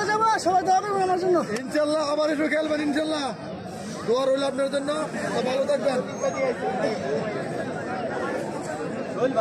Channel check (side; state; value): both; identical; correlation 1.00